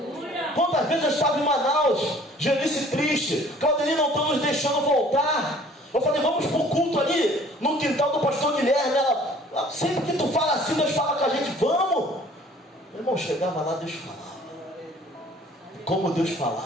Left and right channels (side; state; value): both; normal; correlation 0.53